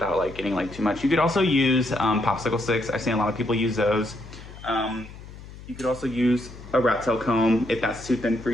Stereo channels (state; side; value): noise; left; hum, 16 dB below the sound